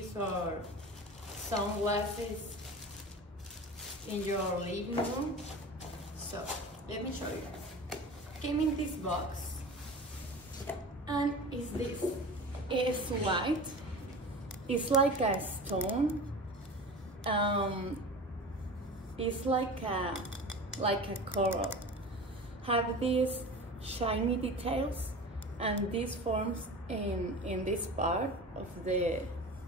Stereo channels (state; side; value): normal; both; correlation 0.34